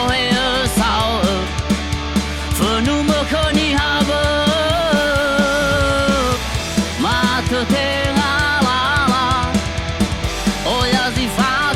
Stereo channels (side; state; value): both; identical; correlation 1.00